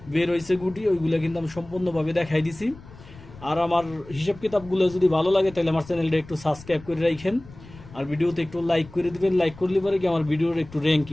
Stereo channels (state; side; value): noise; left; rumble, 19 dB below the sound